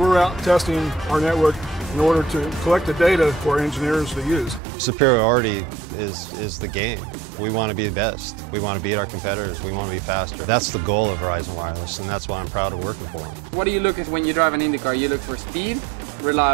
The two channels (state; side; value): drops out; left; at 4.6 s